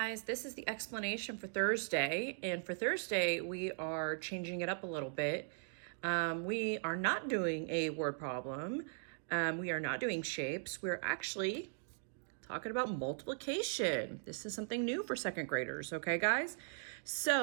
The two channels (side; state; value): left; silent; digital silence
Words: this is the explanation for Thursday, and for Thursday we are changing it up a little bit. We are not doing a word problem. We are not doing shapes. We're actually talking about multiplication. This is something new for second graders, okay guys?